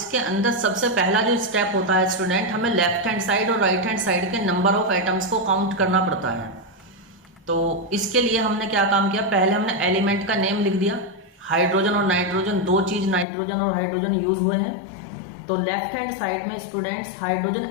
अंदर सबसे पहला जो स्टेप होता है स्टूडेंट, हमें लेफ्ट हैंड साइड और राइट हैंड साइड के नंबर ऑफ एटम्स को काउंट करना पड़ता है। तो इसके लिए हमने क्या काम किया, पहले हमने एलिमेंट का नेम लिख दिया। हाइड्रोजन और नाइट्रोजन, दो चीज नाइट्रोजन और हाइड्रोजन यूज हुए हैं। तो लेफ्ट हैंड साइड में स्टूडेंट्स हाइड्रोजन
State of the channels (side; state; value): right; drops out; at 13.2 s